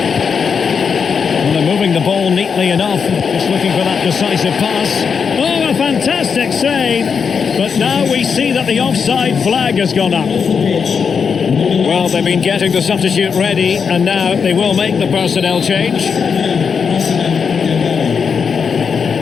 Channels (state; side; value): quieter; right; 6.2 dB